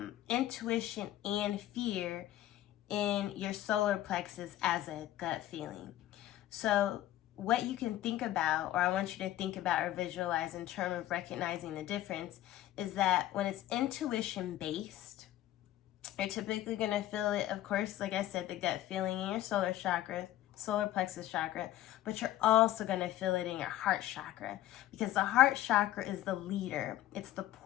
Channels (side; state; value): right; quieter; 13.8 dB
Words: intuition and fear in your solar plexus as a gut feeling. So what you can think about, or I want you to think about or visualize in terms of recognizing the difference, is that when it's intuition based, you're typically going to feel it, of course, like I said, the gut feeling in your solar plexus chakra, but you're also going to feel it in your heart chakra, because the heart chakra is the leader. It's the